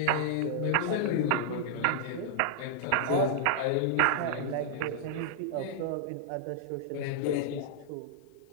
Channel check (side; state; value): both; different; correlation -0.01